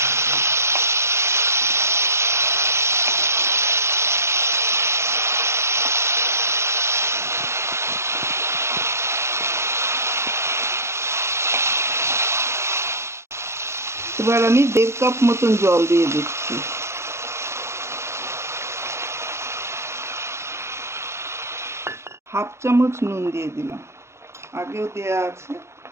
এবার আমি 1.5 কাপ মতন জল দিয়ে দিচ্ছি। হাফ চামচ নুন দিয়ে দিলাম, আগেও দেয়া আছে,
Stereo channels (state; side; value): late; left; 0.13 ms